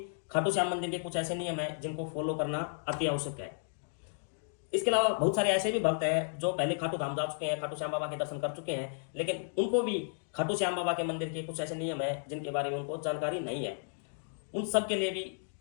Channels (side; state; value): right; silent; digital silence